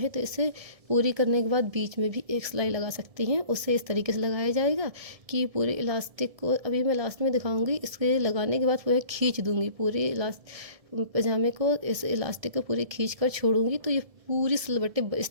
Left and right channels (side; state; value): left; late; 1.7 ms